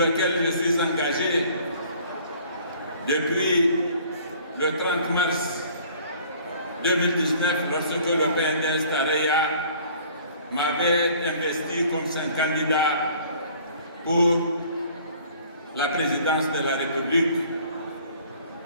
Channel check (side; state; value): both; inverted; correlation -0.53